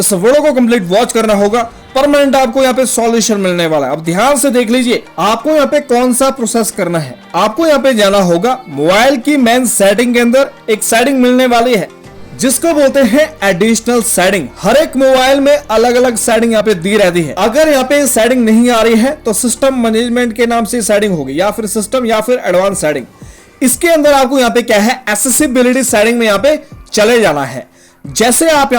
वीडियो को कंप्लीट वॉच करना होगा, परमानेंट आपको यहाँ पे सॉल्यूशन मिलने वाला है। अब ध्यान से देख लीजिए आपको यहाँ पे कौन सा प्रोसेस करना है। आपको यहाँ पे जाना होगा मोबाइल की मेन सेटिंग के अंदर, एक सेटिंग मिलने वाली है जिसको बोलते हैं एडिशनल सेटिंग। हर एक मोबाइल में अलग अलग सेटिंग यहाँ पे दी रहती है। अगर यहाँ पे सेटिंग नहीं आ रही है तो सिस्टम मैनेजमेंट के नाम से सेटिंग होगी, या फिर सिस्टम या फिर एडवांस सेटिंग। इसके अंदर आपको यहाँ पे क्या है एक्सेसिबिलिटी सेटिंग में यहाँ पे चले जाना है। जैसे आप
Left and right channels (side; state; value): both; identical; correlation 1.00